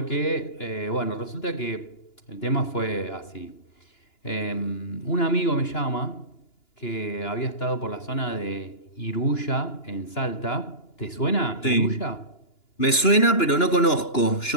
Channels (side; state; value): right; late; 2.9 ms